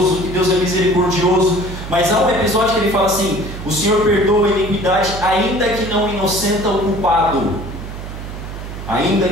que Deus é misericordioso. Mas há um episódio que ele fala assim: o Senhor perdoa a iniquidade, ainda que não inocenta o culpado. Ainda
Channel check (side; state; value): right; noise; hum, 10 dB below the sound